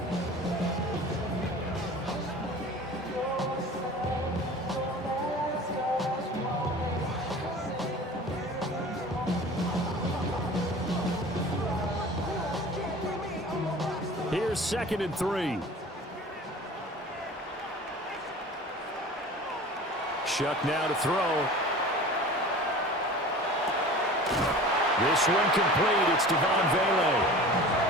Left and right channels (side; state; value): both; normal; correlation 0.40